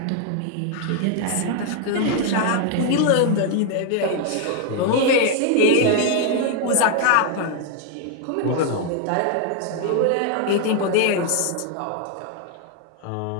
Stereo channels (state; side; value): different; both; correlation 0.00